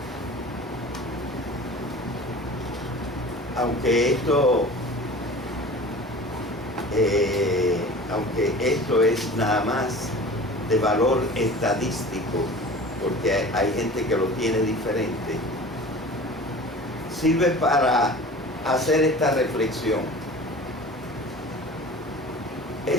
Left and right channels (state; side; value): normal; both; correlation 0.40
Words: Aunque esto es nada más de valor estadístico, porque hay gente que lo tiene diferente, sirve para hacer esta reflexión.